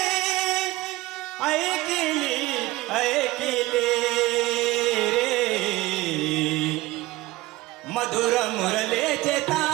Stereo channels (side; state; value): left; quieter; 19.0 dB